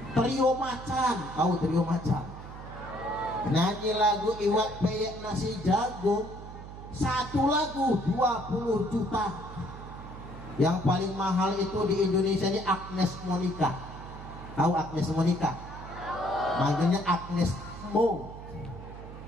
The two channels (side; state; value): right; noise; hum, 13 dB below the sound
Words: Trio Macan, tahu Trio Macan? Nyanyi lagu iwak peyek nasi jagung, satu lagu 20 juta. Yang paling mahal itu di Indonesia ini Agnes Monica. Tahu Agnes Monica? Manggilnya Agnes Mo.